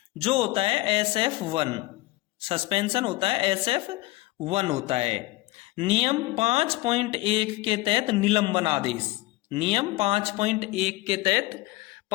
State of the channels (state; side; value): quieter; right; 19.8 dB